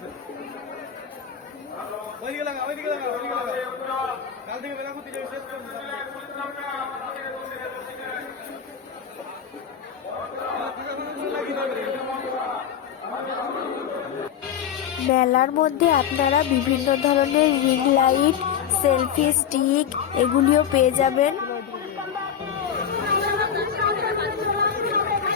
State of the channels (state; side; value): quieter; right; 8.4 dB